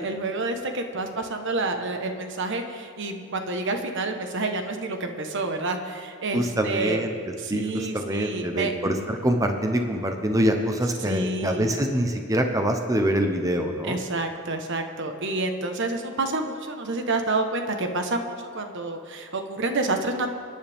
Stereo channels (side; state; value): both; normal; correlation 0.37